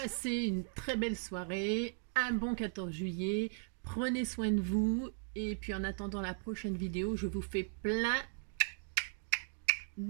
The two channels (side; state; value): left; silent; digital silence